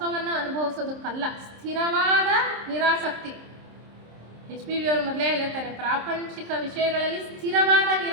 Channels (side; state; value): left; late; 26 ms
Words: ಅನುಭವಿಸೋದಕ್ಕಲ್ಲ, ಸ್ಥಿರವಾದ ನಿರಾಸಕ್ತಿ. HPV ಅವರು ಮೊದಲೇ ಹೇಳ್ತಾರೆ, ಪ್ರಾಪಂಚಿಕ ವಿಷಯಗಳಲ್ಲಿ ಸ್ಥಿರವಾದ